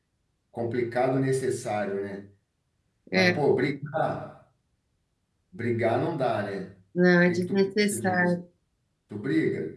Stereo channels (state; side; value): identical; both; correlation 1.00